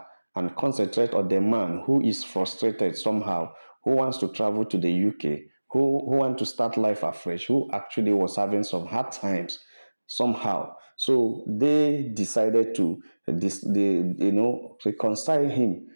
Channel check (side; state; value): both; inverted; correlation -1.00